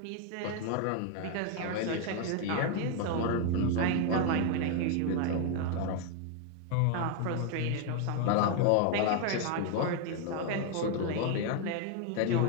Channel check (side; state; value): both; different; correlation 0.01